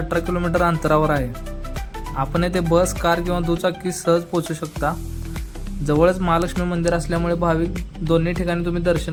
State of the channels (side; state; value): both; identical; correlation 1.00